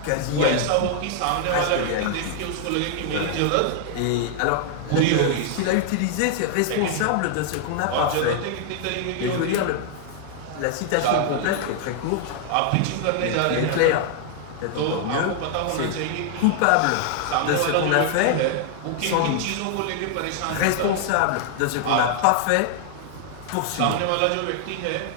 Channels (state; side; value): different; both; correlation 0.00